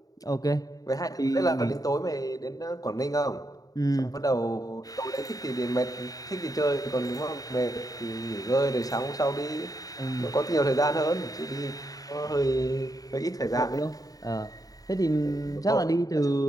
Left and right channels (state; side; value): late; right; 0.18 ms